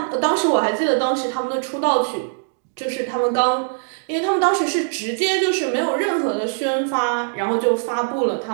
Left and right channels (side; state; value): left; silent; digital silence